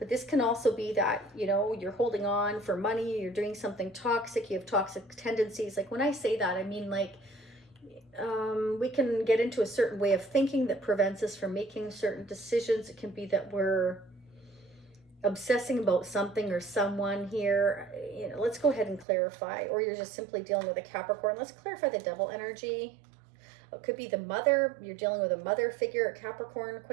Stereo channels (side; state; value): left; drops out; at 19.1 s